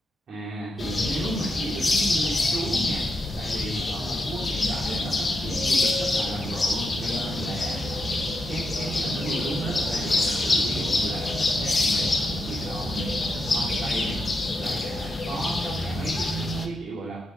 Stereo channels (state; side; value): normal; both; correlation 0.84